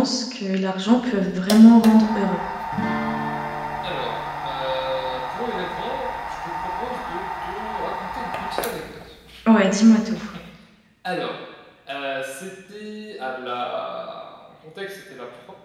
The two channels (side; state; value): both; identical; correlation 1.00